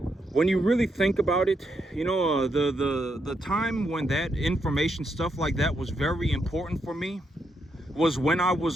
When you really think about it, the time when that information, stuff like that, was very important for me was when I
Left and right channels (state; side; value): normal; both; correlation 0.80